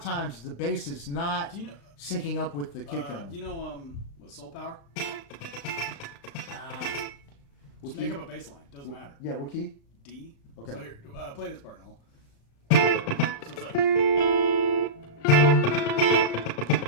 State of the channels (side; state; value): right; late; 35 ms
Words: the bass is not syncing up with the kick drum. Do you know what Soul Power? Just key? make up a bass line. Doesn't matter. Yeah, what key? D. Okay. So here, play this part, Noel. So it's like.